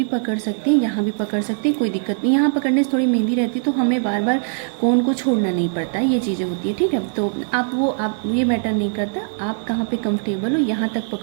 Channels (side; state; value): left; silent; digital silence